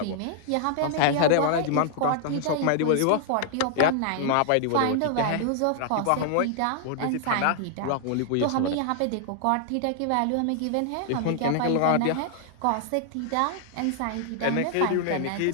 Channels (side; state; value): both; different; correlation -0.01